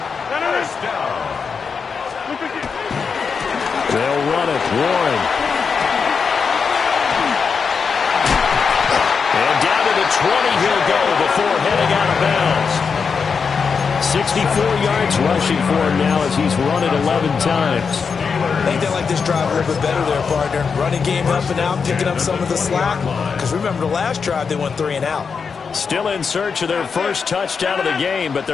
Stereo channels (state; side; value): quieter; right; 5.7 dB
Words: They'll run it. Warren. And down to the 20 he'll go before heading out of bounds. 64 yards rushing for him now as he's run it 11 times. I think they like this drive a little bit better there, partner. Running game helping out, picking up some of the slack. Because remember, the last drive they went 3 and out. Still in search of their first touchdown of the game, but